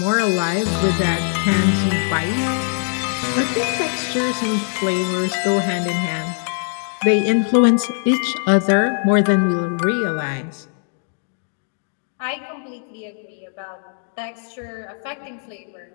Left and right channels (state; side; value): silent; right; digital silence